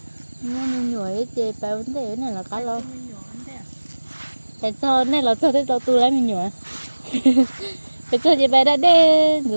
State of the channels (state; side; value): inverted; both; correlation -1.00